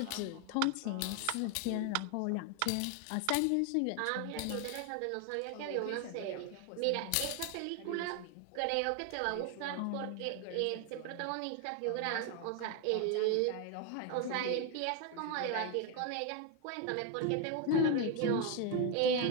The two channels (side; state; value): both; different; correlation 0.01